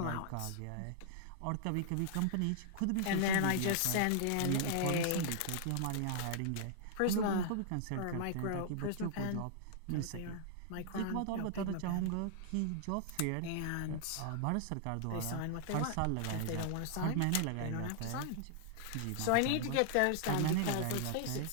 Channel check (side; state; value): both; different; correlation -0.01